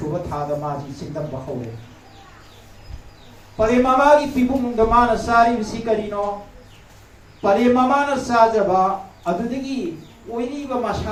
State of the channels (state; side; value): identical; both; correlation 1.00